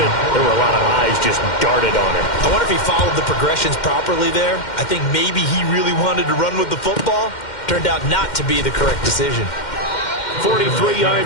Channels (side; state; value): right; late; 2.1 ms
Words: there were a lot of eyes just darted on him. I wonder if he followed the progressions properly there. I think maybe he really wanted to run with the football. Turned out not to be the correct decision. 43